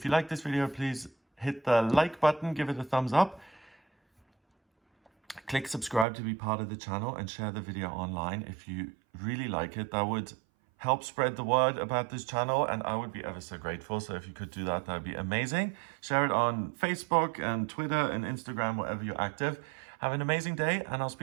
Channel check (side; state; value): left; drops out; at 6.1 s